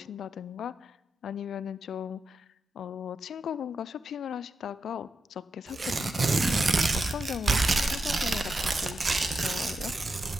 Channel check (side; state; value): both; normal; correlation 0.86